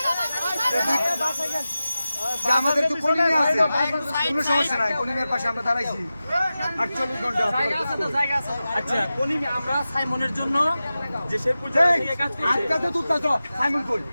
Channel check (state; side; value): inverted; both; correlation -0.94